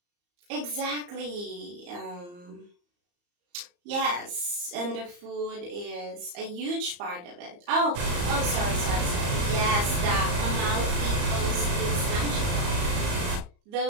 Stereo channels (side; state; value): left; late; 34 ms